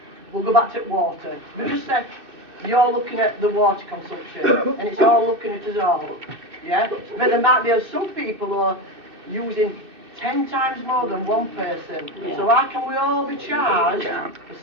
We'll go back to water. We just said you're looking at the water consumption, and it's all looking at us all. Yeah, but there might be some people who are using 10 times more than one person. Yeah. So how can we all be charged a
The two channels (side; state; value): left; late; 2.6 ms